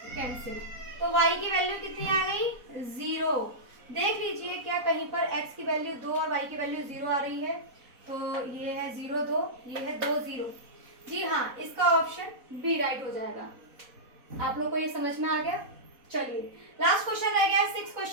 कैंसिल, तो y की वैल्यू कितनी आ गई 0। देख लीजिए क्या कहीं पर x की वैल्यू 2 और y की वैल्यू 0 आ रही है। तो ये है 0 2, ये है 2 0। जी हाँ, इसका ऑप्शन बी राइट हो जाएगा। आप लोग को ये समझ में आ गया। चलिए लास्ट क्वेश्चन रह गया है 6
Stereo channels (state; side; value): late; left; 4.1 ms